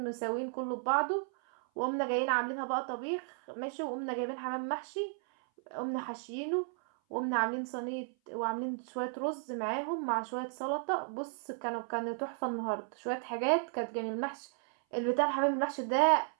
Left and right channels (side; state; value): left; silent; 55 dB below the other